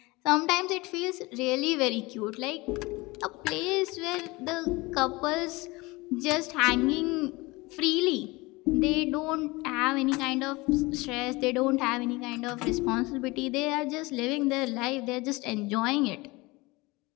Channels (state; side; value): quieter; right; 23.1 dB